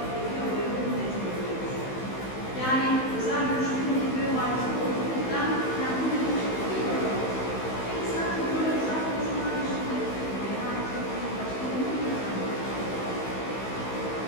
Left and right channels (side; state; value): right; late; 15 ms